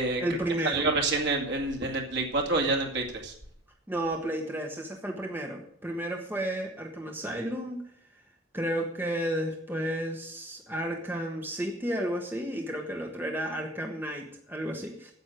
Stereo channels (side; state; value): both; normal; correlation 0.41